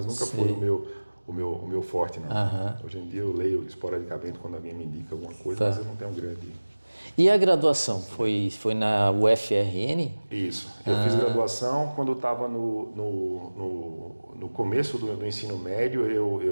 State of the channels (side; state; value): both; inverted; correlation -1.00